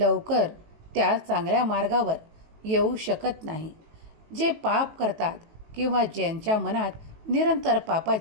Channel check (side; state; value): left; late; 19 ms